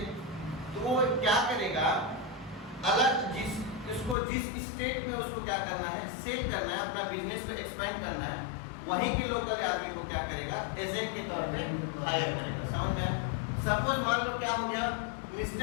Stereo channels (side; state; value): right; drops out; at 4.2 s